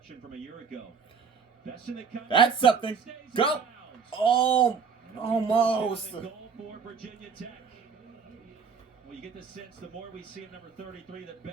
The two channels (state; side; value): quieter; left; 6.0 dB